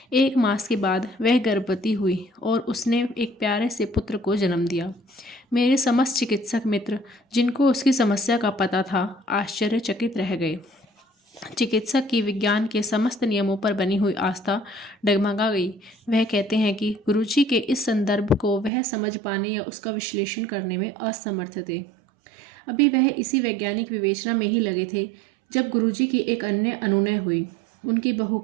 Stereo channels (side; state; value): left; drops out; at 18.7 s